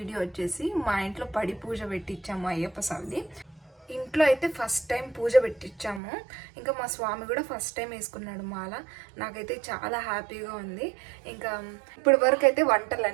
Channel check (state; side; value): drops out; left; at 6.0 s